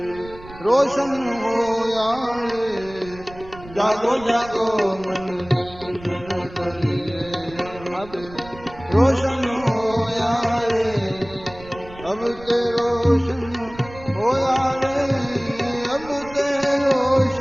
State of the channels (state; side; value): noise; right; rumble, 18 dB below the sound